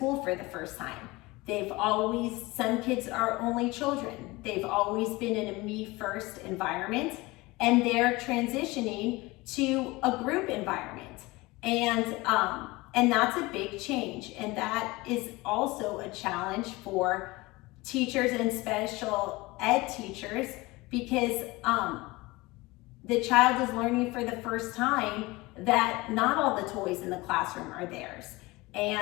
for the first time. Some kids are only children. They've always been in a me-first environment, and they're transitioning to a group environment. And that's a big change. And that is also a challenge for teachers and special ed teachers, because the child is learning for the first time that not all the toys in the classroom are theirs.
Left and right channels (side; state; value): right; quieter; 21.9 dB